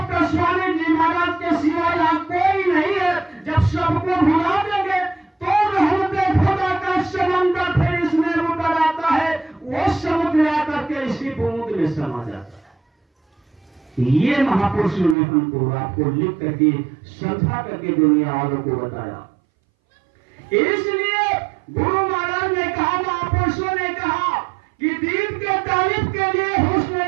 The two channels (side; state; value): left; drops out; at 15.2 s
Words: स्वामी जी महाराज के सिवाय यहाँ कोई नहीं है, जब सबको भुला देंगे तो रहमते खुदा का समंदर फिर इसमें उतर आता है, वो समुद्र आकर के इसी बूंद में समा जाता है। ये महापुरुषों ने हमको आपको लिख करके समझा करके दुनिया वालों को बताया। इसलिए गुरु महाराज ने कहा, महापुरुषों ने कहा कि दीप के तारीफ के लिए